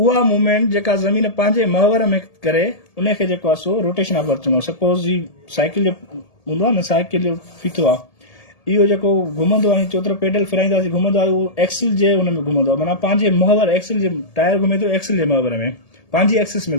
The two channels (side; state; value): right; late; 1.7 ms